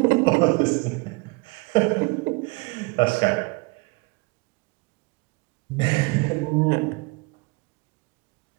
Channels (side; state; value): left; quieter; 26.6 dB